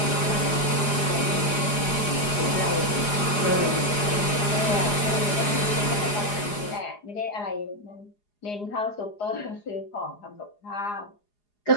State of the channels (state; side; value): late; right; 4.8 ms